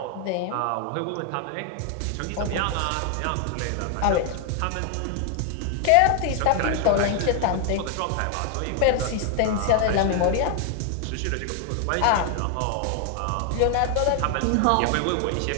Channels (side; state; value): both; different; correlation 0.00